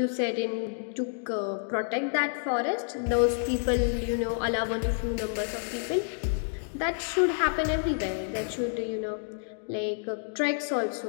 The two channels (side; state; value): right; silent; digital silence